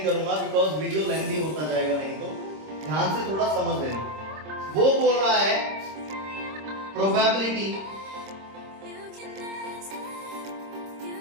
करूंगा बिकॉज वीडियो लेंथी होता जाएगा, नहीं तो ध्यान से थोड़ा समझ लेना। वो बोल रहा है probability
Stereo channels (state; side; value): late; left; 26 ms